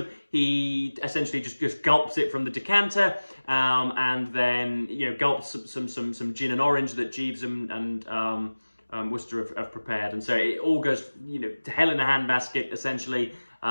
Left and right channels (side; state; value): both; inverted; correlation -1.00